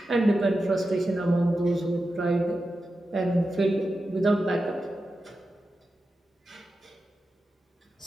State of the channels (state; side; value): normal; both; correlation 0.91